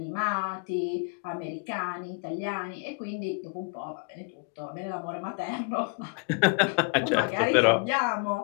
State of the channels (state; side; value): quieter; right; 32.7 dB